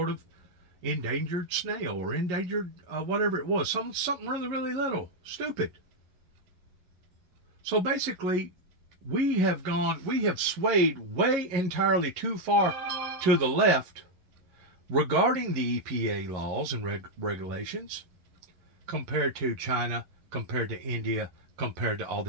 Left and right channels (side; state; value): left; late; 11 ms